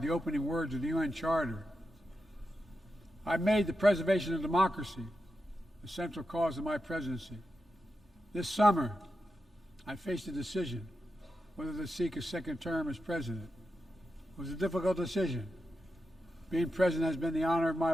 the opening words of the UN Charter. I made the preservation of democracy the central cause of my presidency. This summer, I faced a decision whether to seek a second term as president. It was a difficult decision. Being president has been the honor of my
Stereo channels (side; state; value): both; normal; correlation 0.89